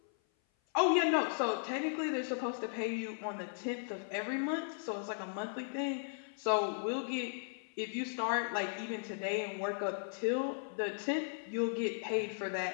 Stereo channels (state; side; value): silent; right; 53 dB below the other